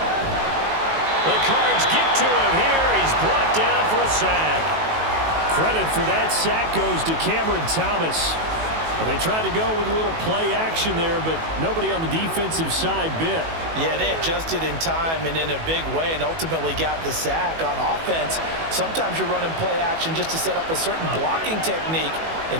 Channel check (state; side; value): late; left; 18 ms